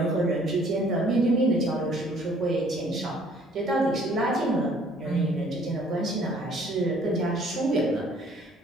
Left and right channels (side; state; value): both; normal; correlation 0.58